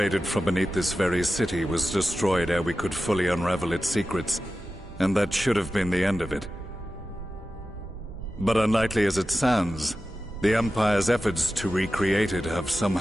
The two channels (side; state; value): both; normal; correlation 0.93